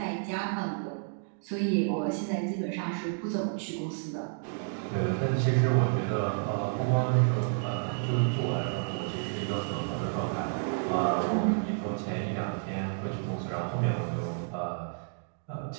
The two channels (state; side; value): silent; left; digital silence